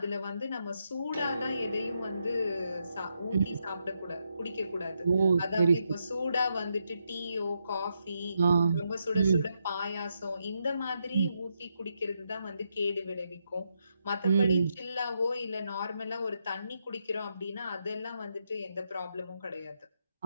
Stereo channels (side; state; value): both; inverted; correlation -0.82